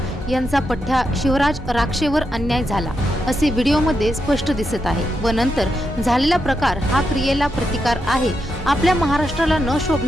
यांचा पठ्ठा शिवराज राक्षेवर अन्याय झाला असे व्हिडिओमध्ये स्पष्ट दिसत आहे व नंतर झालेला प्रकार हा क्रियेला प्रतिकार आहे। आपल्या महाराष्ट्राला न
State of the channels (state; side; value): normal; both; correlation 0.85